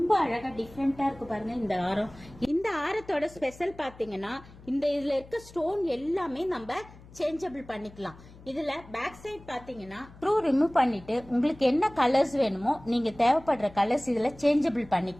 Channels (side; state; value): left; noise; hum, 21 dB below the sound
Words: அழகா டிஃப்ரெண்டா இருக்கு பாருங்க. இந்த ஆரம், இந்த ஆரத்தோட ஸ்பெஷல் பாத்தீங்கன்னா இந்த இதுல இருக்க ஸ்டோன் எல்லாமே நம்ம சேஞ்சபிள் பண்ணிக்கலாம். இதுல பேக் சைட் பாத்தீங்கன்னா ஸ்க்ரூ ரிமூவ் பண்ணிட்டு உங்களுக்கு என்ன கலர்ஸ் வேணுமோ நீங்க தேவைப்படுற கலர்ஸ் இதுல சேஞ்சபிள்